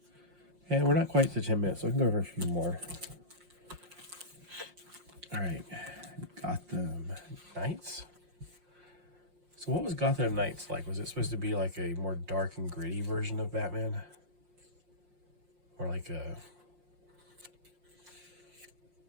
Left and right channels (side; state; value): left; late; 5.6 ms